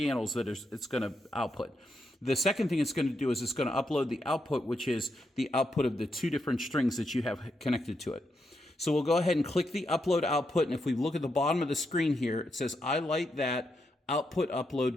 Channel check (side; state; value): both; normal; correlation 0.82